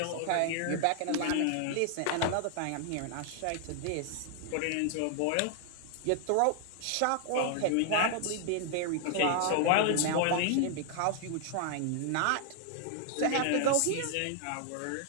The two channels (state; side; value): different; both; correlation 0.00